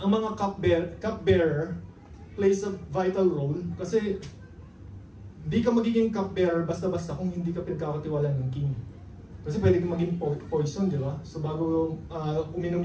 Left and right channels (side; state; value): both; identical; correlation 1.00